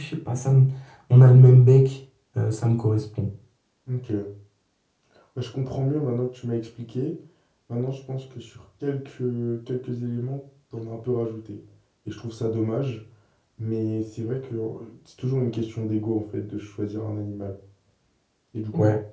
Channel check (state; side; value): identical; both; correlation 1.00